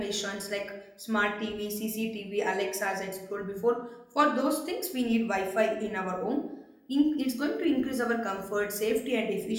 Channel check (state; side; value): identical; both; correlation 1.00